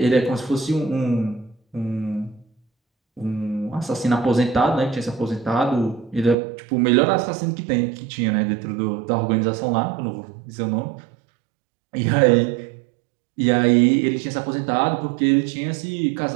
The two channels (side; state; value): left; drops out; at 6.4 s